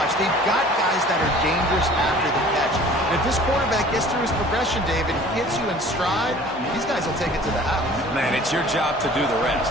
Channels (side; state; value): both; normal; correlation 0.48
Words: they've got guys that are dangerous after the catch. And if this quarterback gets through his progression, David, hits you in stride, these guys will take it to the house. Man, it's your job to do the rest,